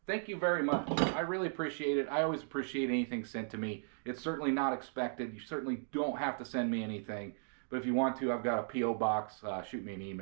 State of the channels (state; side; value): silent; left; digital silence